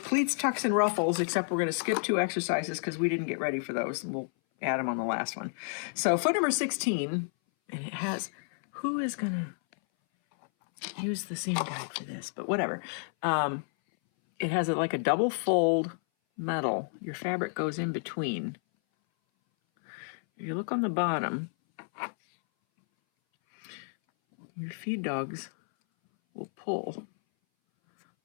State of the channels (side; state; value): right; silent; 57 dB below the other